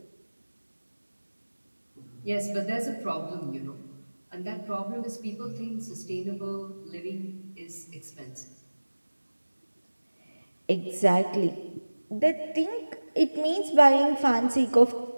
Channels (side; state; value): both; inverted; correlation -1.00